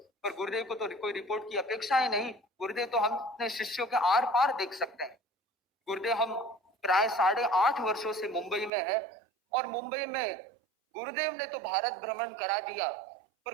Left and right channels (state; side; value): drops out; left; at 8.7 s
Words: पर गुरुदेव को तो कोई रिपोर्ट की अपेक्षा ही नहीं। गुरुदेव तो हम अपने शिष्यों के आर पार देख सकते हैं। गुरुदेव हम प्राय 8.5 वर्षों से मुंबई में है, और मुंबई में गुरुदेव ने तो भारत भ्रमण करा दिया,